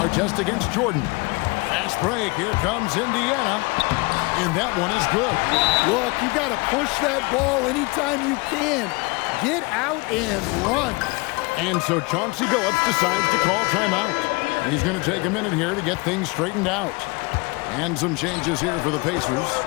against Jordan. Fast break. Here comes Indiana. And that one is good. Look, you got to push that ball anytime you can. Get out and run. And so Chauncey Billups decides to call timeout. He's going to take a minute here to get things straightened out. And some changes here for the Pacers.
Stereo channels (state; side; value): quieter; right; 26.4 dB